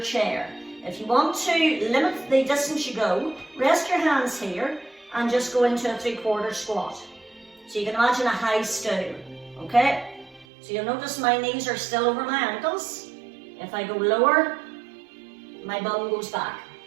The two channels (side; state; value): left; drops out; at 10.5 s